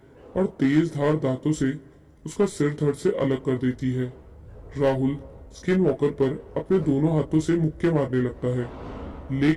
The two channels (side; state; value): both; identical; correlation 1.00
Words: और तेज धार दांतों से उसका सिर धड़ से अलग कर देती है। राहुल स्किन वॉकर पर अपने दोनों हाथों से मुक्के मारने लगता है,